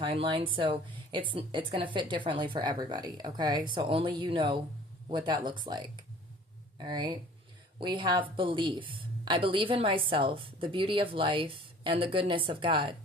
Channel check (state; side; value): normal; both; correlation 0.50